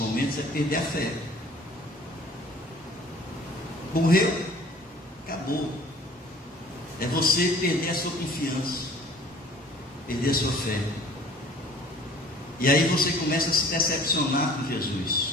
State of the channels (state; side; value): normal; both; correlation 0.50